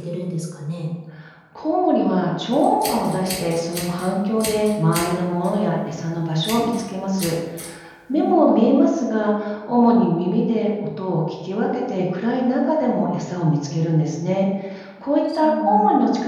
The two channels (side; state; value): both; identical; correlation 1.00